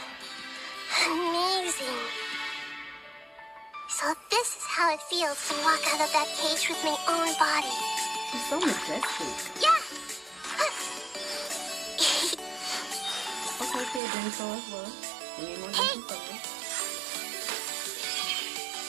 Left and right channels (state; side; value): drops out; left; at 14.0 s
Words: Amazing. So this is how it feels to walk out of that cage with my own body. It's so majestic. Yeah! Okay, kid, then so as well. We need more Genshin focus.